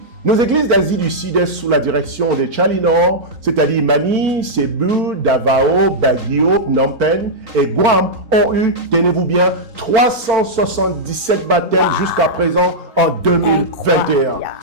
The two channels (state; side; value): late; left; 4.5 ms